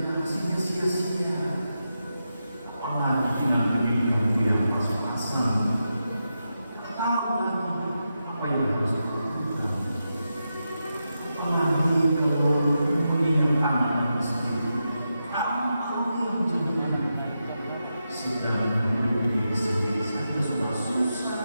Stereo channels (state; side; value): inverted; both; correlation -0.88